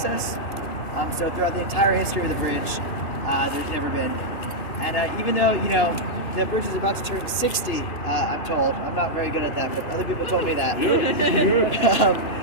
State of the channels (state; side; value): late; right; 2.8 ms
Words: So throughout the entire history of the bridge, there's never been. And even though, the bridge is about to turn 60, I'm told. I'm not very good at that, but other people told me that.